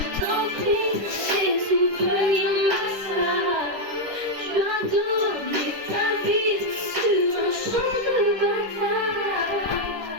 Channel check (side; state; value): left; late; 10 ms